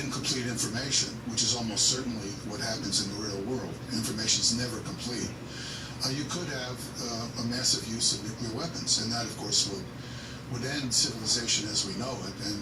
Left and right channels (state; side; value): identical; both; correlation 1.00